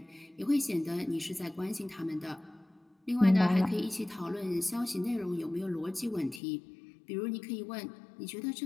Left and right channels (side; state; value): right; drops out; at 6.4 s